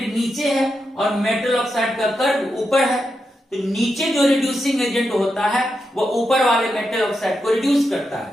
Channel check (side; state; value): both; normal; correlation 0.86